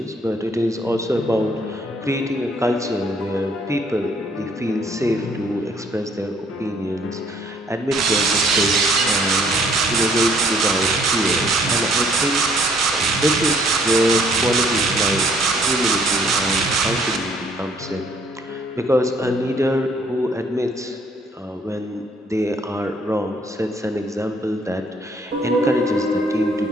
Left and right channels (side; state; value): both; normal; correlation 0.63